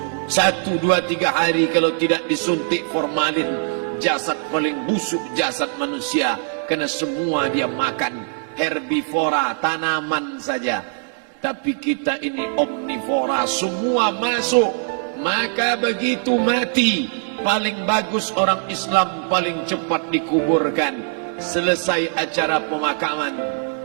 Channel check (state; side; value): silent; left; 60 dB below the other